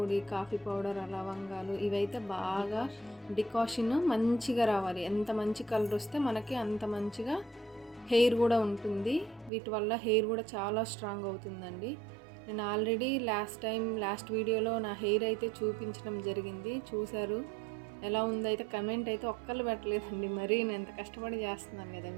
కాఫీ పౌడర్, లవంగాలు ఇవైతే బాగా డికాషన్ మంచిగా రావాలి. ఎంత మంచి కలర్ వస్తే మనకి అంత మంచిగా హెయిర్ కూడా ఉంటుంది. వీటి వల్ల హెయిర్ కూడా చాలా స్ట్రాంగ్ అవుతుందండి. నేను ఆల్రెడీ లాస్ట్ వీడియోలో నా హెయిర్ అయితే చూపించడం జరిగింది, చూశారు. ఎలా ఉందైతే కమెంట్ అయితే ఒక్కళ్ళు పెట్టలేదండి. మరీ నేను ఎంత కష్టపడి చేస్తున్నాను కదా,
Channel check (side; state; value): left; drops out; at 9.5 s